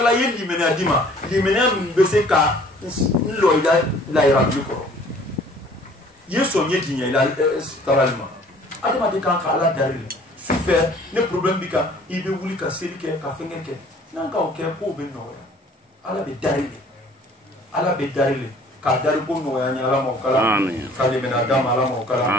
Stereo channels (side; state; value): both; normal; correlation 0.54